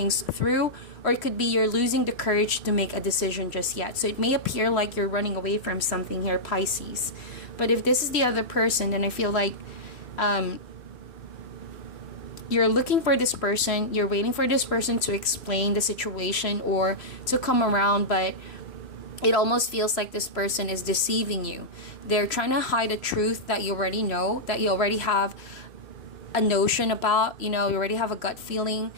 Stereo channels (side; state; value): right; late; 3.0 ms